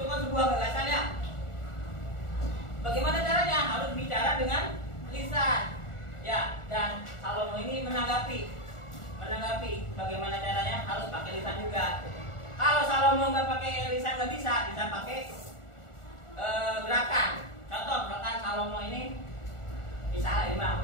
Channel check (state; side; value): late; right; 1.4 ms